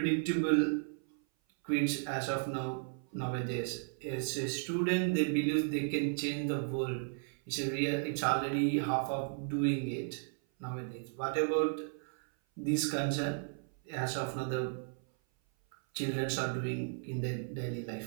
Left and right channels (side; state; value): left; silent; 55 dB below the other